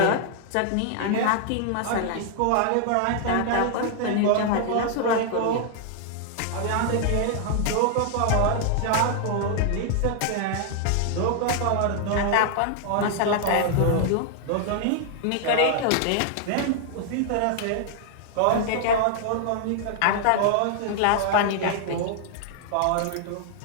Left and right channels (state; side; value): different; both; correlation 0.00